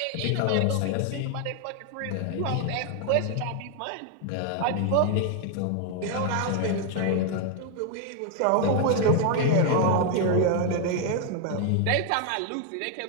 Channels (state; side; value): different; both; correlation 0.00